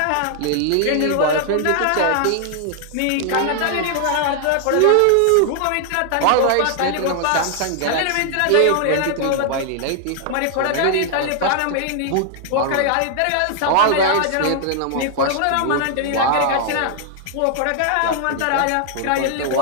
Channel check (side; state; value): both; different; correlation 0.00